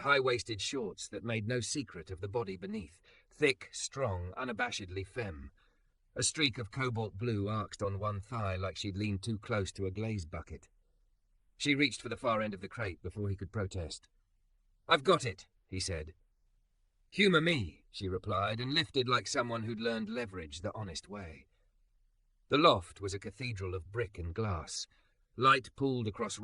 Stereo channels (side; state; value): both; identical; correlation 1.00